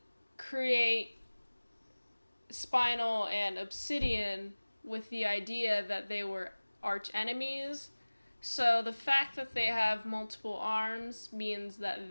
create spinal and obsidian with the idea that they were arch enemies. So the fact that they have multiple arms means that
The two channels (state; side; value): inverted; both; correlation -1.00